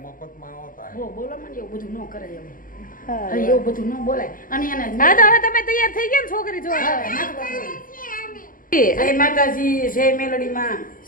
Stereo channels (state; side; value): late; right; 0.40 ms